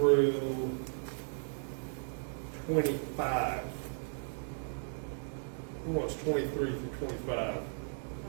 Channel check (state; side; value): silent; left; digital silence